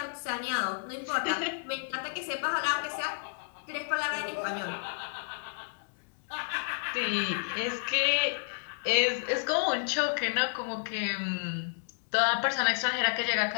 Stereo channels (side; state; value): right; silent; digital silence